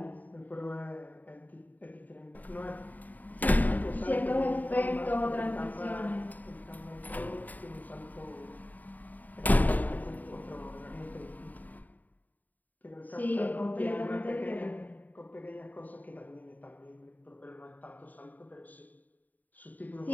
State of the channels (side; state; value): right; late; 0.081 ms